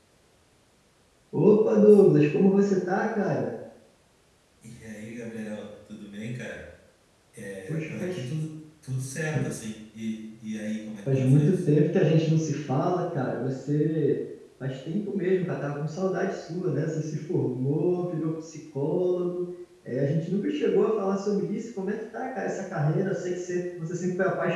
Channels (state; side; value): identical; both; correlation 1.00